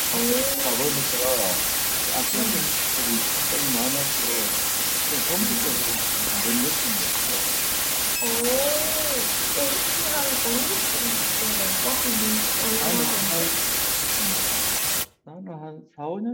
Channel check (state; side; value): identical; both; correlation 1.00